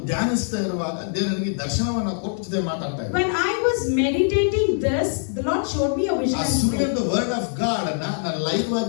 ಧ್ಯಾನಿಸ್ತಾ ಇರುವಾಗ ದೇವರು ನನಗೆ ದರ್ಶನವನ್ನ ಕೊಟ್ಟು ಜೊತೆ ಮಾತಾಡ್ತಾ ಇದ್ದ. When I was meditating this, the Lord showed me a vision. ಆ ಸುಳ್ಳಿನ ವರ್ಡ್ ಆಫ್ ಗಾಡ್ ಅನ್ನ ನಾನು ಲೈವ್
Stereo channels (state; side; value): silent; right; digital silence